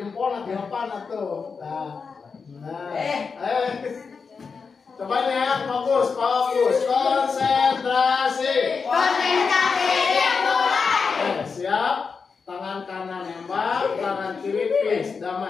di depan atau. Coba nih ya, fokus, konsentrasi. Siap. Tangan kanan nembak, tangan kiri please,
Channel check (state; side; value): quieter; right; 5.3 dB